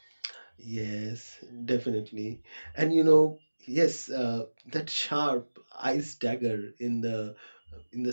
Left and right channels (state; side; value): inverted; both; correlation -1.00